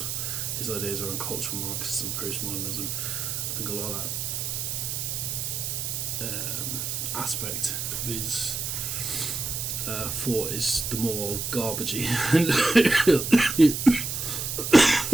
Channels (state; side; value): noise; right; hiss, 3 dB below the sound